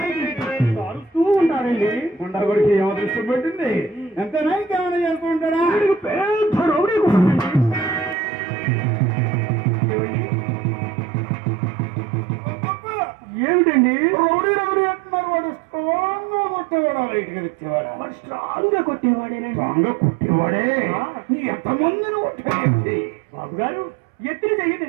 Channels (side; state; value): left; drops out; at 8.2 s